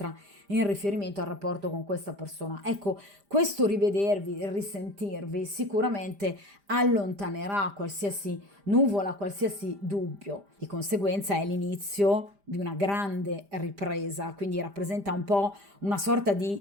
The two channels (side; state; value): left; late; 5.0 ms